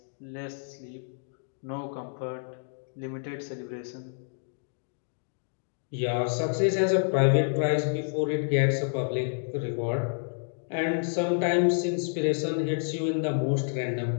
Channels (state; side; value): silent; right; digital silence